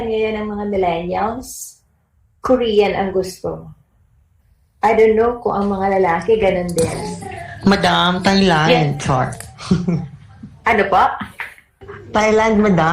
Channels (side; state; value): both; identical; correlation 1.00